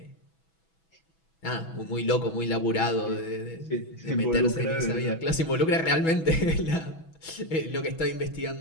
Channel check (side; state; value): right; late; 6.1 ms